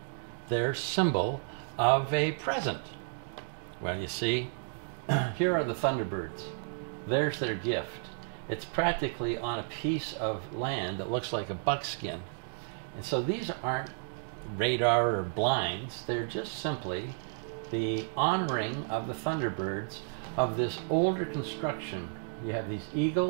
their symbol of a present. Well, you see, here are the Thunderbirds. There's their gift. It's practically on a piece of land that looks like a buckskin. And so these aren't radar or blinds. They're just simply the honoring of the Thunderbirds of this older construction. You have these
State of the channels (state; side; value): silent; left; digital silence